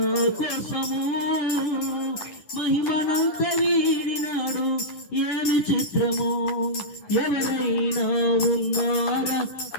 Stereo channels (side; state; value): right; late; 10 ms